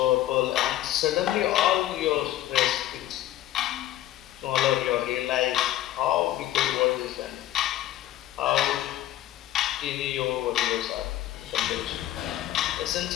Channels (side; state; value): right; quieter; 13.7 dB